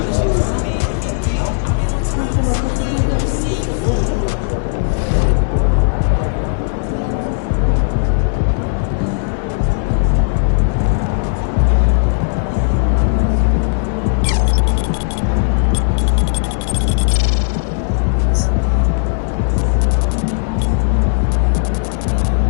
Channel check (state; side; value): silent; right; digital silence